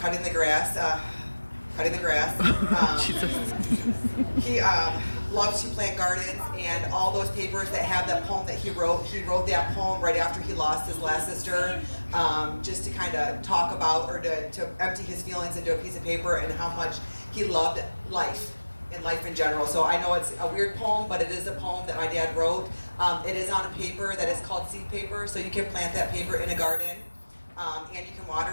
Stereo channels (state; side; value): inverted; both; correlation -1.00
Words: the grass. He loves to plant gardens, and all those papers that have that poem that he wrote that poem right after he lost his last sister, just to kind of talk about, or to empty his feelings into a piece of paper, and how much he loved life and life in general. So I know it's a weird poem, but it is a poem that my dad wrote. It is on a paper that is called seed paper, so you can plant that paper in a garden, and you can